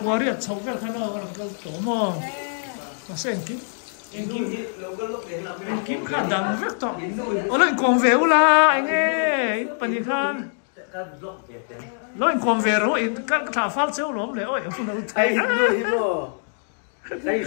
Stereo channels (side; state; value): right; silent; digital silence